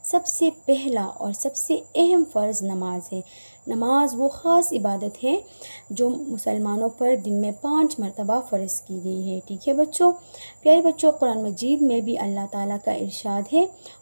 सबसे पहला और सबसे अहम फ़र्ज़ नमाज है। नमाज वो ख़ास इबादत है जो मुसलमानों पर दिन में 5 मरतबा फ़र्ज़ की गई है। ठीक है बच्चों। प्यारे बच्चों, कुरान मजीद में भी अल्लाह ताला का इरशाद है,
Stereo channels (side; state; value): both; inverted; correlation -1.00